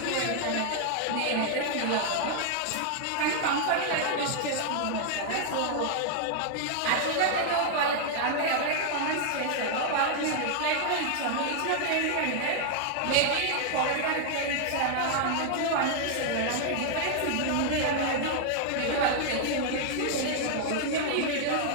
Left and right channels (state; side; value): different; both; correlation 0.00